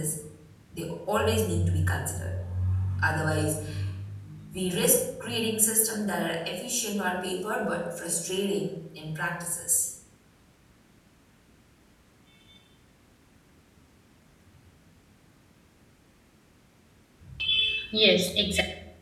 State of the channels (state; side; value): identical; both; correlation 1.00